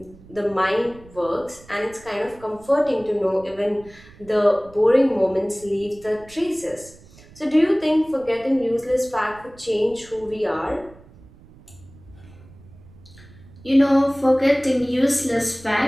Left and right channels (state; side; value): noise; right; rumble, 23 dB below the sound